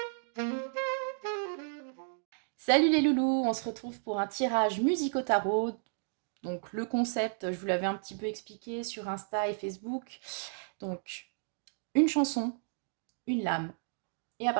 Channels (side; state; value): left; silent; digital silence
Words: Salut les loulous, on se retrouve pour un tirage musique au tarot. Donc le concept, je vous l'avais un petit peu expliqué sur Insta et Facebook. Donc une chanson, une lame, et à